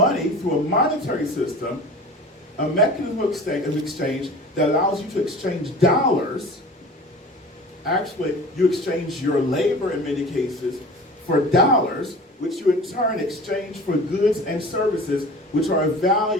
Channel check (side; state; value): both; normal; correlation 0.39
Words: through a monetary system, a mechanism of exchange that allows you to exchange dollars. Actually, you exchange your labor in many cases for dollars, which you in turn exchange for goods and services which are of